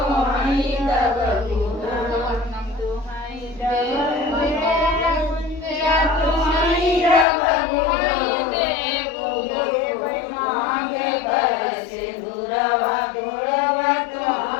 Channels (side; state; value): right; drops out; at 7.2 s